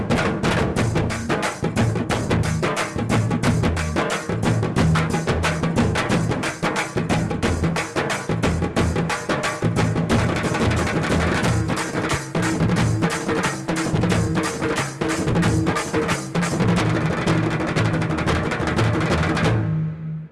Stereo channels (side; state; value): both; identical; correlation 1.00